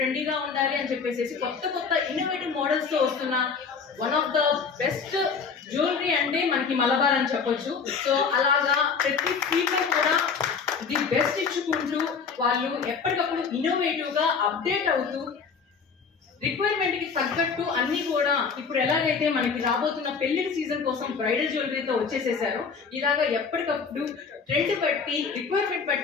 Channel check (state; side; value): quieter; right; 5.6 dB